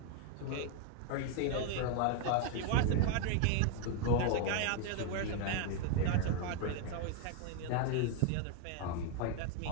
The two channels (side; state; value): both; different; correlation 0.01